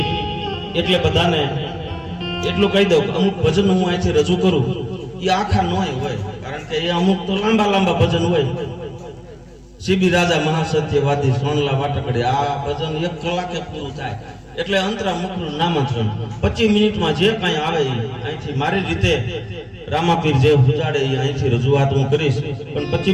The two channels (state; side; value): identical; both; correlation 1.00